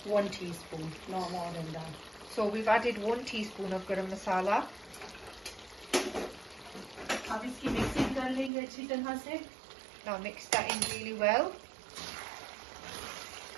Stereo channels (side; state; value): left; drops out; at 8.5 s